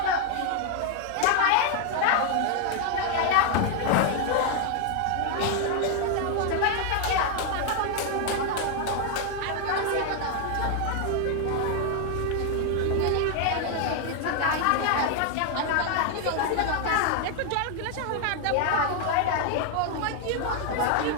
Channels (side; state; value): both; different; correlation 0.00